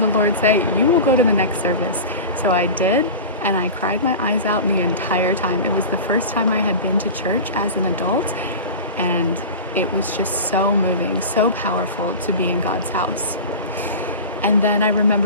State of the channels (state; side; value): inverted; both; correlation -0.30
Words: the Lord say, "You will go to the next service." So I did, and I cried my eyes out the entire time. It was the first time I had been to church as an adult, and it was just so moving, so powerful to be in God's house. And then I